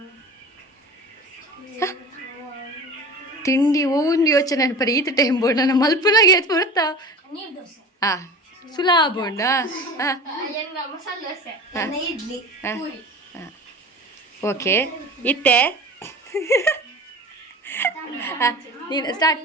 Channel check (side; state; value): both; normal; correlation 0.36